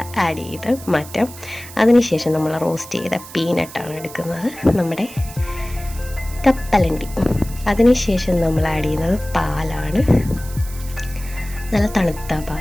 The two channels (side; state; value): right; noise; hiss, 16 dB below the sound